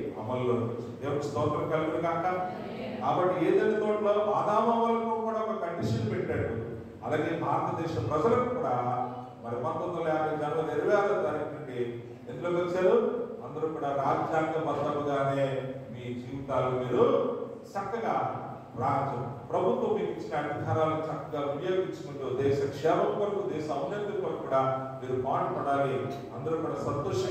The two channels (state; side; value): identical; both; correlation 1.00